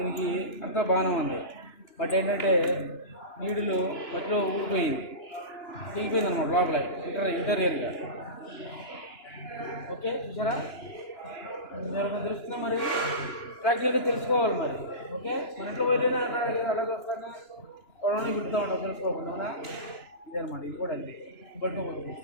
అంతా బాగానే ఉంది, బట్ ఏంటంటే నీడులు మధ్యలో ఊడిపోయింది, దిగిపోయింది అనమాట లోపల ఇంటీరియర్గా. ఓకే, చూసారా? ఎవరికైనా తెలుస్తుందా మరి? ప్రాక్టికల్గా తెలుసుకోవాలి మరి. ఓకే, మన ఇంట్లో వైరైనా అలాగే వస్తాను కొడవని విడుతూ ఉంటాం తెలుసుకోకుండా, అవునా? ఇదే అనమాట, ఇది కూడా అంతే పట్టుకోకూడదు.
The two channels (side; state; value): right; late; 2.9 ms